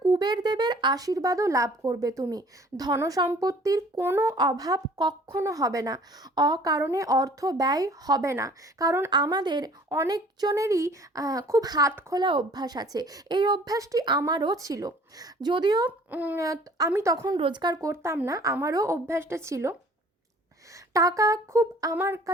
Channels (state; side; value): normal; both; correlation 0.52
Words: কুবের দেবের আশীর্বাদও লাভ করবে তুমি। ধনসম্পত্তির কোনো অভাব কখনো হবে না, অকারণে অর্থ ব্যয় হবে না। কারণ আমাদের অনেকজনেরই খুব হাত খোলা অভ্যাস আছে। এই অভ্যাসটি আমারও ছিল, যদিও আমি তখন রোজগার করতাম না, আমারও অভ্যাসটা ছিল। টাকা খুব আমার